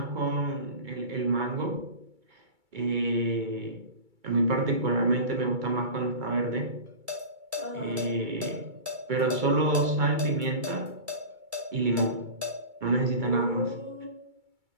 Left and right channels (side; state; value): left; late; 2.3 ms